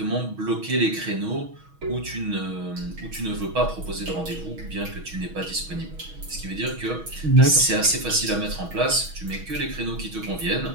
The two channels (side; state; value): left; late; 6.3 ms